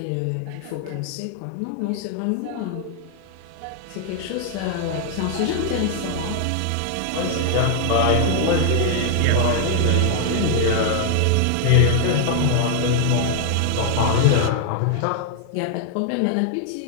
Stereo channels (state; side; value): different; both; correlation 0.00